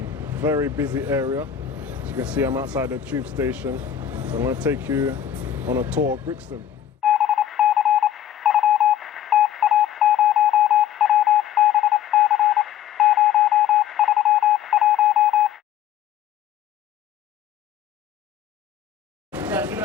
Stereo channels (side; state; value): right; quieter; 10.1 dB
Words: very busy area. As you can see, I'm outside the tube station. So I'm going to take you on a tour of Brixton.